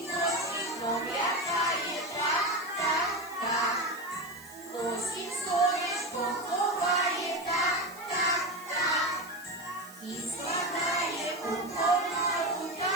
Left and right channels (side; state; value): right; noise; hiss, 19 dB below the sound